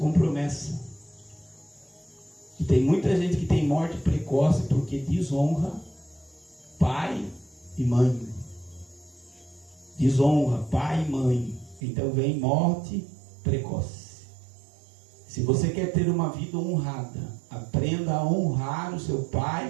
promessa. E tem muita gente que tem morte precoce porque desonra pai e mãe. Desonra pai e mãe. Então vem morte precoce. Se você quer ter uma vida honrada, aprenda a honrar o seu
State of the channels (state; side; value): drops out; left; at 11.8 s